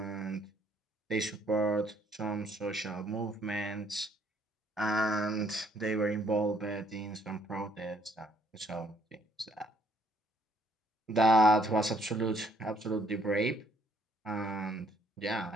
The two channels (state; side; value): normal; both; correlation 0.66